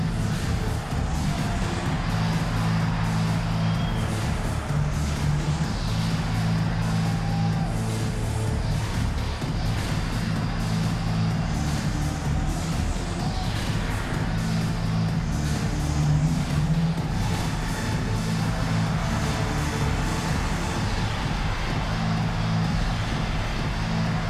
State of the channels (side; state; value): both; identical; correlation 1.00